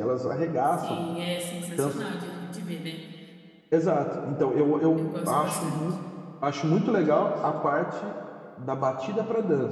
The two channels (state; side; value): identical; both; correlation 1.00